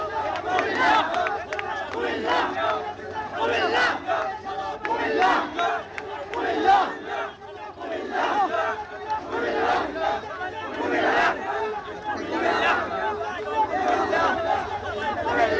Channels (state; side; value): identical; both; correlation 1.00